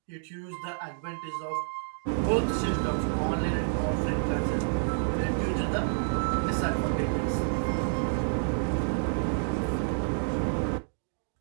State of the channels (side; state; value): left; silent; digital silence